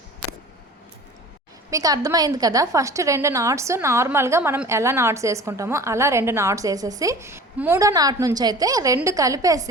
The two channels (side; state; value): both; normal; correlation 0.42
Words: మీకు అర్థమైంది కదా. ఫస్ట్ 2 నాట్స్ నార్మల్గా మనం ఎలా నాట్స్ వేసుకుంటామో అలా 2 నాట్స్ వేసేసి 3వ నాట్ నుంచి అయితే 2